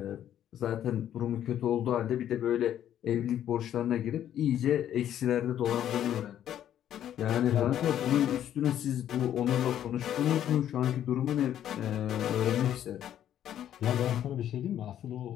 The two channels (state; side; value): quieter; right; 10.8 dB